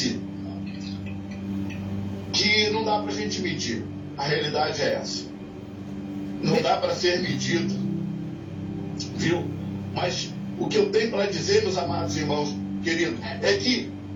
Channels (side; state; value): both; identical; correlation 1.00